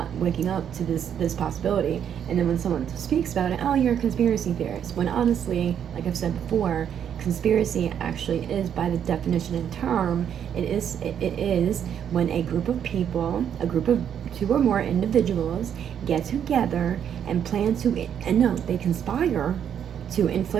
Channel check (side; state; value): left; quieter; 8.9 dB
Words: waking up to this possibility. And then when someone speaks about it, oh, you're a conspiracy theorist. When honestly, like I've said before, conspiracy actually is, by the definition and term, it is when a group of people, a group of 2 or more individuals, get together and plan to, and no, they conspire to